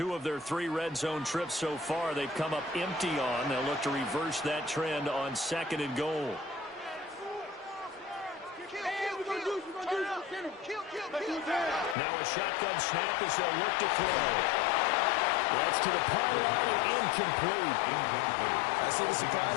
of their 3 red zone trips so far, they've come up empty on. They'll look to reverse that trend on 2nd and goal. Now a shotgun snap as they'll look to throw. That's to the pylon and incomplete. I see the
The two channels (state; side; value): drops out; right; at 12.0 s